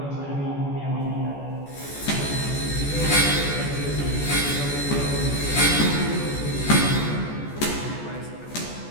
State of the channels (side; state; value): right; late; 14 ms